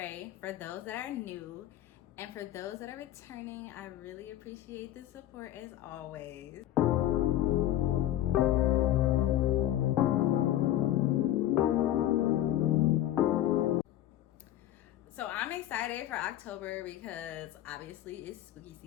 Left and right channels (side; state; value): right; quieter; 13.1 dB